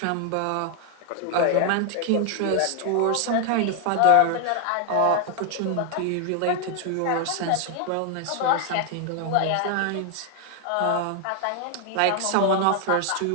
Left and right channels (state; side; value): different; both; correlation 0.00